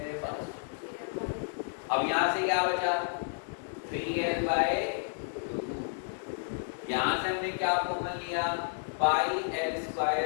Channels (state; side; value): silent; right; digital silence